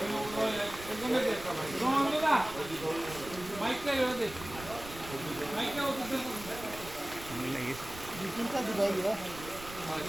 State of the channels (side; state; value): right; noise; rumble, 14 dB below the sound